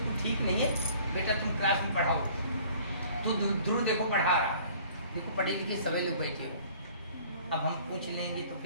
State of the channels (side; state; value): both; inverted; correlation -0.52